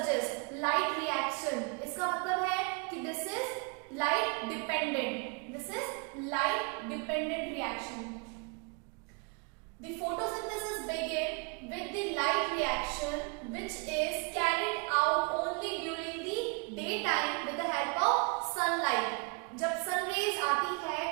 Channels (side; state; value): left; quieter; 33.3 dB